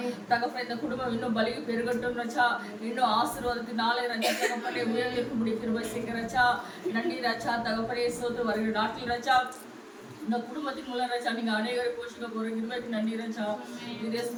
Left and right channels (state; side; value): identical; both; correlation 1.00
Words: தகப்பனே இந்த குடும்பம் இன்னும் பலி பெருகட்டும் ரச்சா இன்னும் ஆசீர்வாதத்தினாலே ரச்சா தகப்பனே உயர்ந்திருக்கும்படி கிருபை செய்யுங்க ரச்சா நன்றி ரச்சா தகப்பனே சோத்து வருகிற நாட்டில் ரச்சா இந்த குடும்பத்தின் மூலம் ரச்சா நீங்க அநேகரை போஷிக்க போற கிருபைக்கு நன்றி ரச்சா